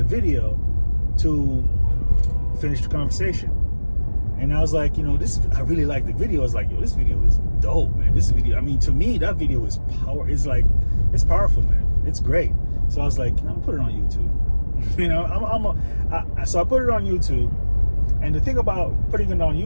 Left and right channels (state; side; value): inverted; both; correlation -1.00